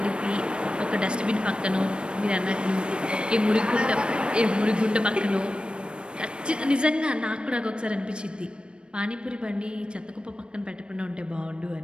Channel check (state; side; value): late; left; 0.056 ms